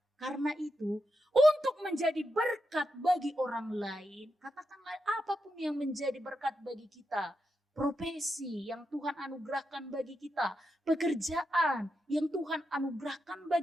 Karena itu, untuk menjadi berkat bagi orang lain, katakanlah apapun yang menjadi berkat bagi kita, profesi yang Tuhan anugerahkan bagi kita, pekerjaan yang Tuhan anugerahkan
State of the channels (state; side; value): normal; both; correlation 0.86